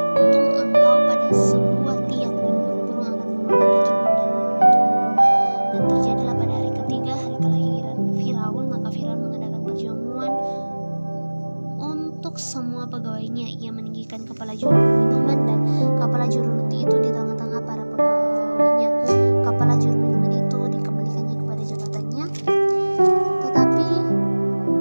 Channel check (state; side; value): inverted; both; correlation -1.00